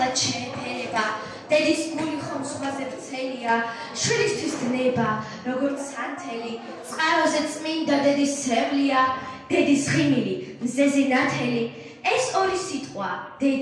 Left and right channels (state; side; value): identical; both; correlation 1.00